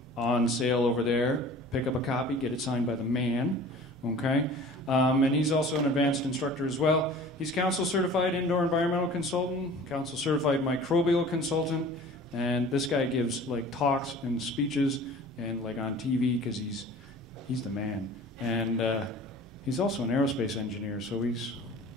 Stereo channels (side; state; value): both; normal; correlation 0.44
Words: on sale over there. Pick up a copy, get it signed by the man, okay? And he's also an advanced instructor as well. He's council certified indoor environmental consultant, council certified microbial consultant, and this guy gives like talks and speeches and like on TV because he's the man. And he's also an aerospace engineer, so he's